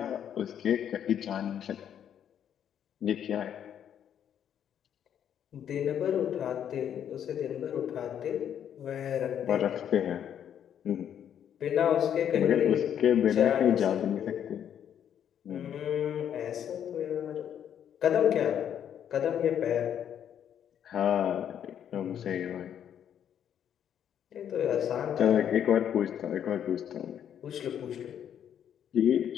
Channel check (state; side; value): quieter; right; 9.3 dB